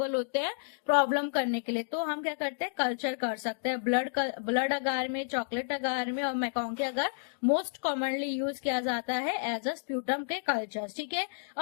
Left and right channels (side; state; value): right; silent; digital silence